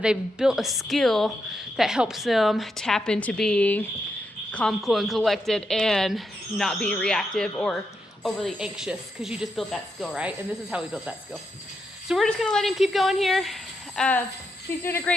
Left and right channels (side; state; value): both; normal; correlation 0.83